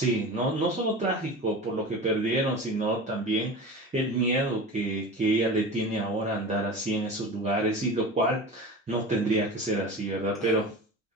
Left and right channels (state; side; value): normal; both; correlation 0.32